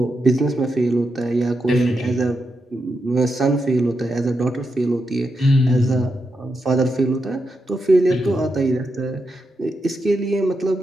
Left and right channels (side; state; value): both; normal; correlation 0.85